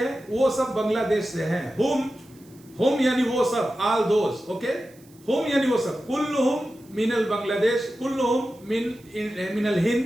वो सब बांग्लादेश से हैं। हुम यानी वो सब, आल दोज। ओके, हुम यानी वो सब। कुल्लुहुम मिनल बांग्लादेश, कुल्लुहुम मिनल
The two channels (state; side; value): noise; right; hiss, 28 dB below the sound